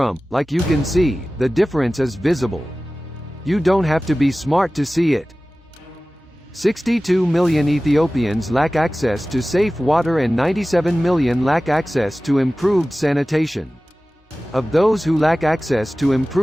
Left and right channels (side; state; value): both; normal; correlation 0.97